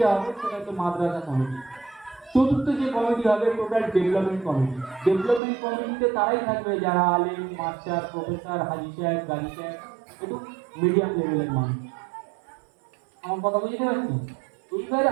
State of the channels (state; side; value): drops out; left; at 5.4 s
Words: হবে সেটা হচ্ছে মাদ্রাসা কমিটি, চতুর্থ যে কমিটি হবে টোটাল ডেভেলপমেন্ট কমিটি। ডেভেলপমেন্ট কমিটিতে তারাই থাকবে যারা আলিম, মাস্টার, প্রফেসর, হাজি সাহেব, গাজী সাহেব, একটু মিডিয়াম লেভেলের মানুষ। আমার কথা বুঝতে পারছি? এইবারে